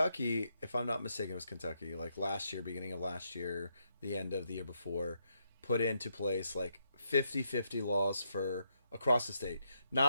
if I'm not mistaken, it was Kentucky. Like last year, beginning of last year, the end of the year before, put into place like 50-50 laws for across the state.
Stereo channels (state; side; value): inverted; both; correlation -0.79